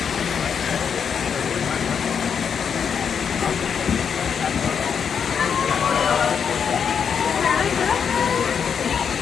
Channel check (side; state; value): right; quieter; 7.0 dB